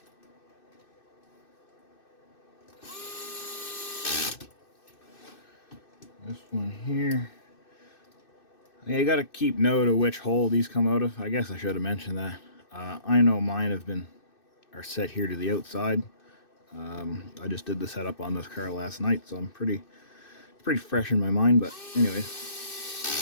This one here. Yeah, you got to keep note of which hole these come out of. I guess I should have mentioned that. I know mine are set here to the outside. I just did the setup on this car last night, so I'm pretty fresh in my mind. But anyway,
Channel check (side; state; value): right; late; 2.6 ms